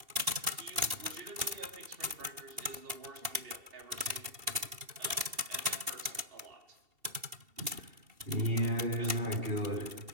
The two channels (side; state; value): left; late; 2.7 ms